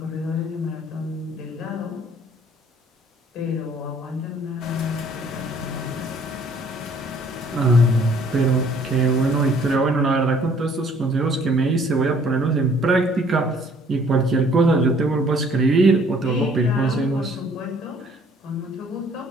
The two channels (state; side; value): normal; both; correlation 0.59